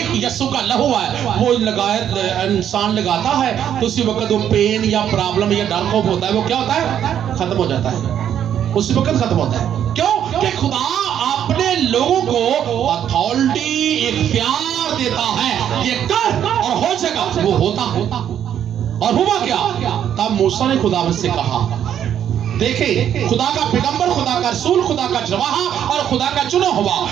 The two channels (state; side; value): quieter; left; 9.7 dB